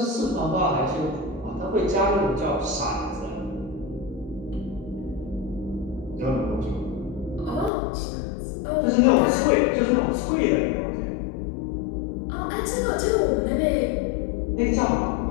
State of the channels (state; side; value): drops out; right; at 7.7 s